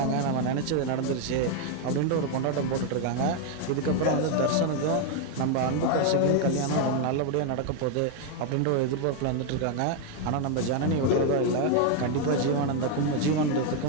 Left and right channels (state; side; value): different; both; correlation 0.01